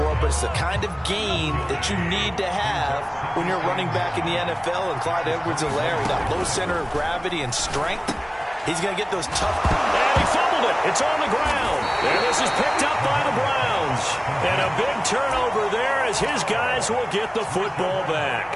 but it's the kind of gain that you need to have when you're running back in the NFL. And Clyde Edwards-Helaire, that low center of gravity and strength, he's going to get those tough. And he fumbled it. It's on the ground. And this is picked up by the Browns. And a big turnover there as his guys will get the football back.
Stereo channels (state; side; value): identical; both; correlation 1.00